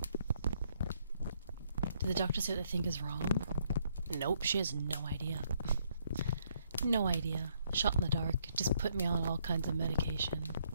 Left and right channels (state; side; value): inverted; both; correlation -0.70